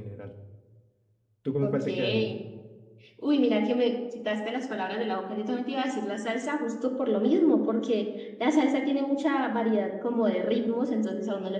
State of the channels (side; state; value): both; identical; correlation 1.00